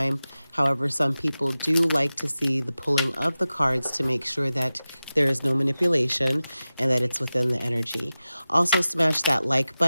However, some people do like to see the pulling of the cards to make sure that there is no manipulation and that it's within the energy. Also, smash that like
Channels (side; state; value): both; inverted; correlation -0.95